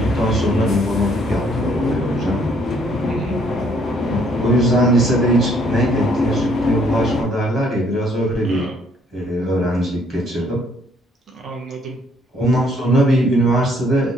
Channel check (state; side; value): normal; both; correlation 0.65